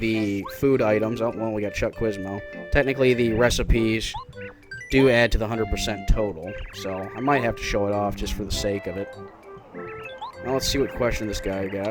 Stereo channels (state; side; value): identical; both; correlation 1.00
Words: food items, oh, well, we got Chuck Quizmo. Technically the recipes do add to the 100% total, so I might have to show it off just for the sake of it. Now let's see what question this guy